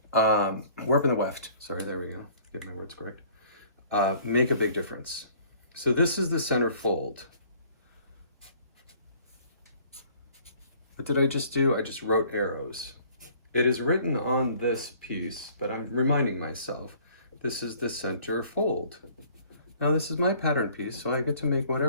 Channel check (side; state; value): both; inverted; correlation -0.55